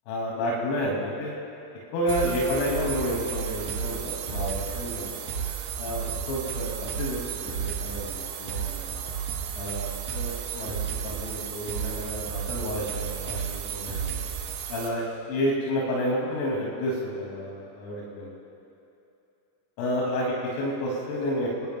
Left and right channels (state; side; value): late; right; 29 ms